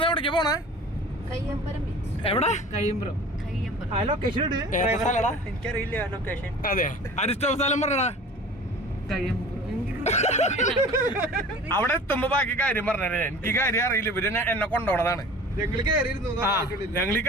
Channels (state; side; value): normal; both; correlation 0.42